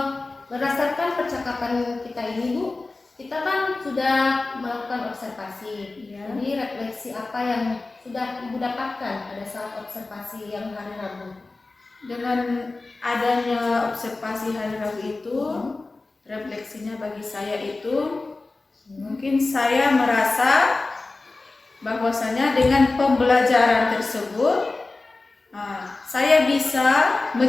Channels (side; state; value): right; quieter; 3.4 dB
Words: berdasarkan percakapan kita ini Bu, kita kan sudah melakukan observasi. Ya. Jadi refleksi apa yang sudah Ibu dapatkan pada saat observasi yang hari Rabu? Dengan adanya observasi hari Rabu itu, refleksinya bagi saya itu mungkin saya merasa bahwasanya dengan pembelajaran tersebut saya bisa